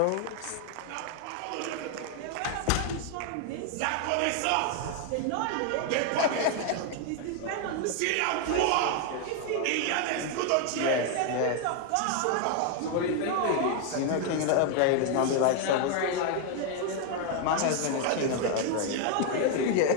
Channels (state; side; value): different; both; correlation 0.01